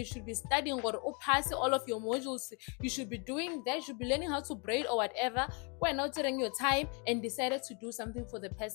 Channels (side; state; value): right; quieter; 35.0 dB